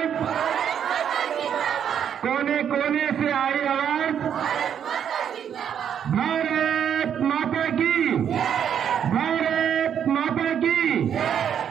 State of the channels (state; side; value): quieter; left; 8.7 dB